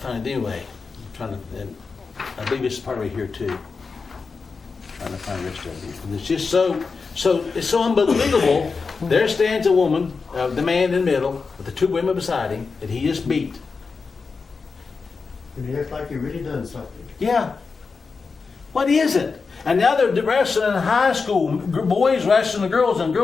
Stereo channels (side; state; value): right; quieter; 4.7 dB